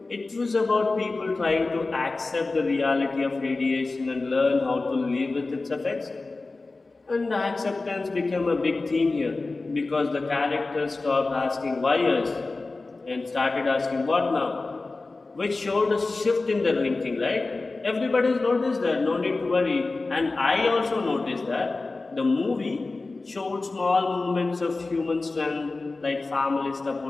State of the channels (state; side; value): quieter; right; 3.5 dB